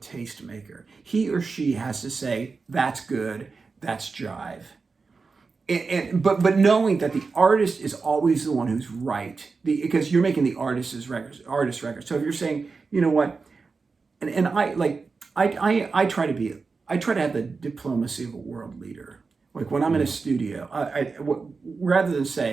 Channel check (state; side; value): quieter; left; 4.5 dB